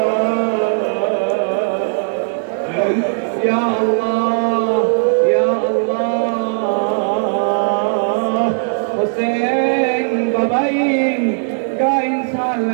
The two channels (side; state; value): left; silent; digital silence